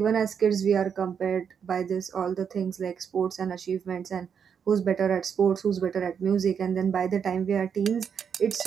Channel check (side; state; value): left; quieter; 7.2 dB